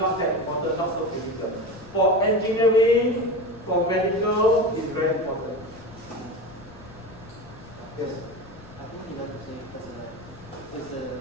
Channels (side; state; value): left; noise; rumble, 23 dB below the sound